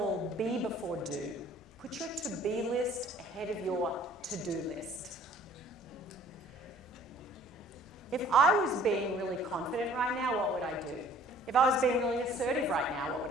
be before do. Put your to-be list ahead of your to-do list. If I was being really confident right now, what would I do? If I was being really assertive right now, what would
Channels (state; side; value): normal; both; correlation 0.54